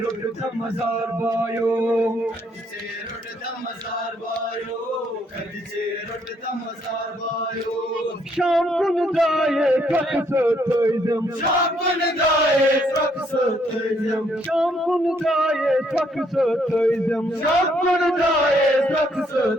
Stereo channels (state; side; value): normal; both; correlation 0.70